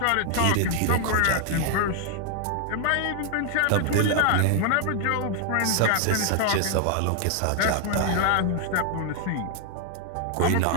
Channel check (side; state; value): both; different; correlation 0.00